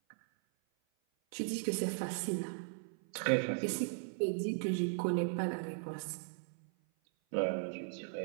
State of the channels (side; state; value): left; silent; 53 dB below the other